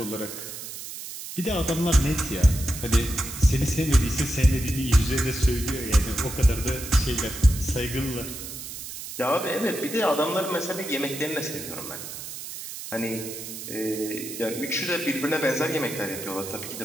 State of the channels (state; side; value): noise; right; hiss, 10 dB below the sound